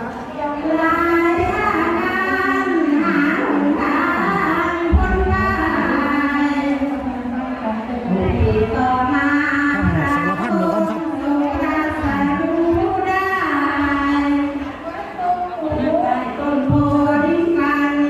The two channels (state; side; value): identical; both; correlation 1.00